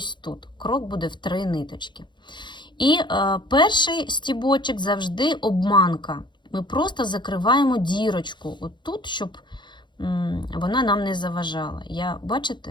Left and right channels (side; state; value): right; late; 0.22 ms